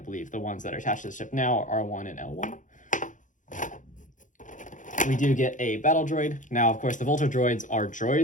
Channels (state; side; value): late; right; 0.37 ms